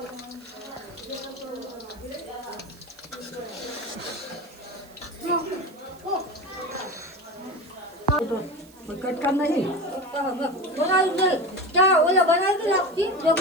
कटका नहीं बोला क्या बोला बना के लगती जब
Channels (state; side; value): noise; right; hiss, 25 dB below the sound